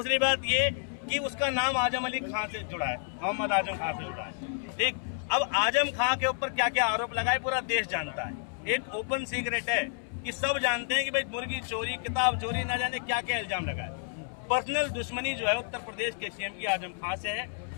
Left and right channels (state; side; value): silent; right; 58 dB below the other